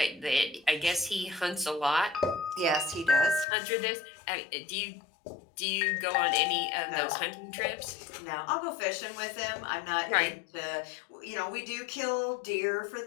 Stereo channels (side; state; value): right; drops out; at 3.5 s